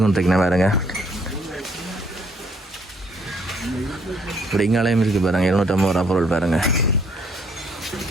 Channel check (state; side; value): normal; both; correlation 0.66